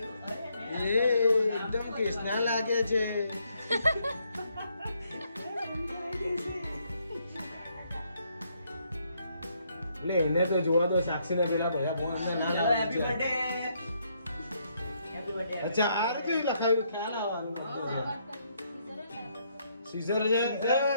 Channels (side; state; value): both; inverted; correlation -0.73